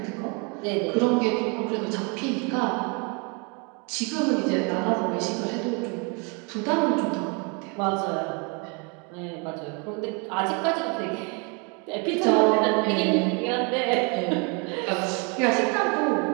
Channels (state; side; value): quieter; left; 32.6 dB